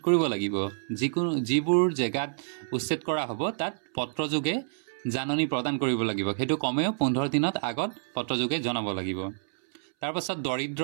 কৰিব লাগিব। যিবোৰ জেগাত উচ্ছেদ কৰা হ'ব তাত পত্ৰযোগে জাননী প্ৰদান কৰিব লাগিব, সেইটো কমেও 15 দিনত আগত পত্ৰযোগে জনাব লাগিব। তাৰপাছত দৰিদ্ৰ,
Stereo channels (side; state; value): left; silent; 59 dB below the other